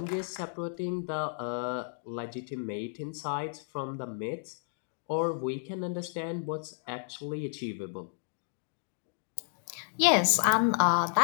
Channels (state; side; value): silent; right; digital silence